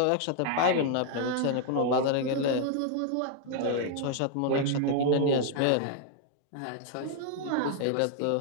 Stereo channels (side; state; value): both; different; correlation 0.00